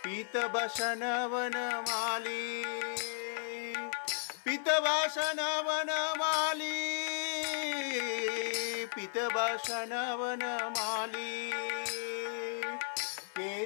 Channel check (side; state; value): right; silent; 54 dB below the other